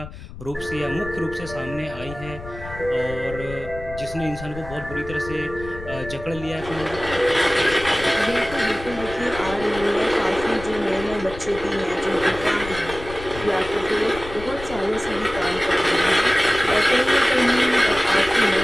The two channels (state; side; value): noise; left; rumble, 13 dB below the sound